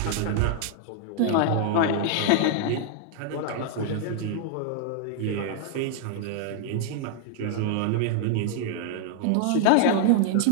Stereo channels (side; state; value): both; different; correlation 0.00